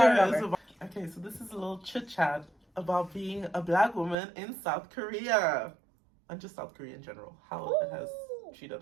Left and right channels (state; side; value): drops out; left; at 4.2 s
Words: is over. about... Okay, so this is a little chit-chat about being a black woman in South Korea. And just South Korea in general. How it has